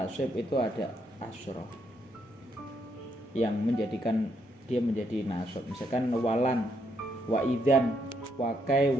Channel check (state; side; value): normal; both; correlation 0.76